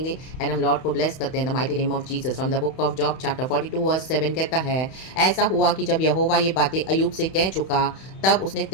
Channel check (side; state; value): right; late; 31 ms